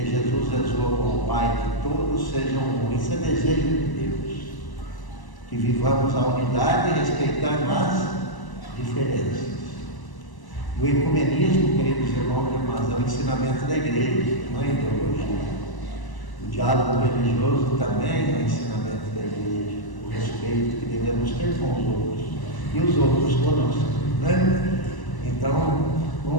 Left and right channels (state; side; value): late; right; 1.0 ms